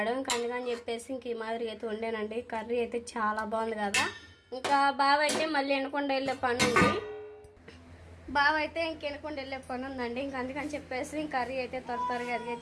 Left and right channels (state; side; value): identical; both; correlation 1.00